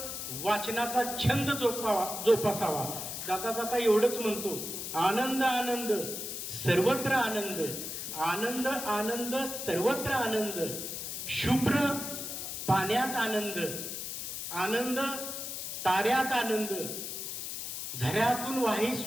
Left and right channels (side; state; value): left; noise; hiss, 6 dB below the sound